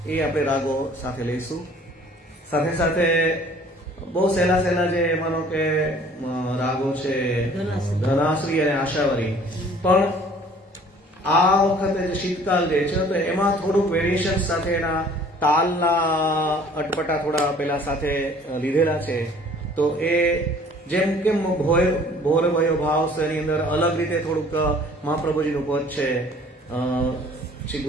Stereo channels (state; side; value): normal; both; correlation 0.53